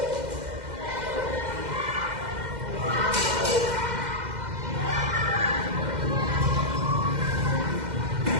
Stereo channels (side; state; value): left; late; 2.1 ms